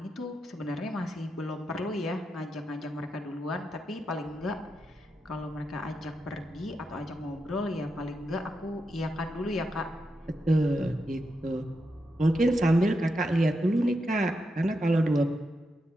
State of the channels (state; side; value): normal; both; correlation 0.85